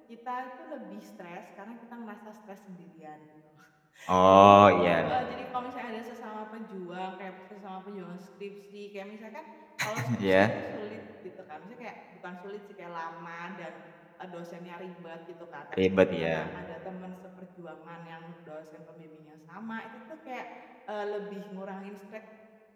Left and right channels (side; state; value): both; identical; correlation 1.00